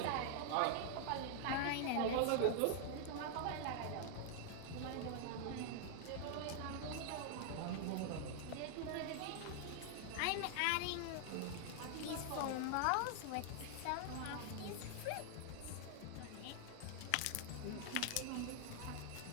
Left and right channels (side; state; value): both; different; correlation 0.00